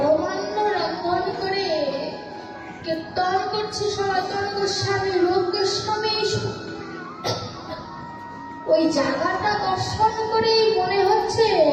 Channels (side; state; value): both; identical; correlation 1.00